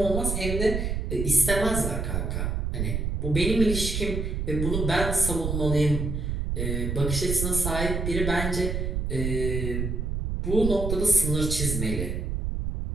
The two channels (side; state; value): right; noise; rumble, 1 dB below the sound